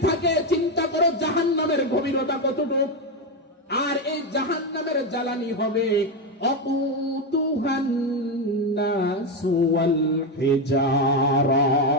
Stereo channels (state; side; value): normal; both; correlation 0.09